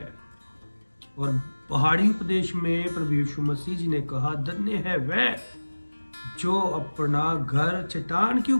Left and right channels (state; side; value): inverted; both; correlation -1.00